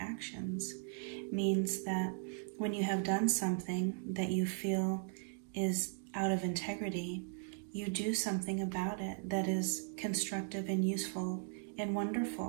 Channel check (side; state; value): left; silent; 53 dB below the other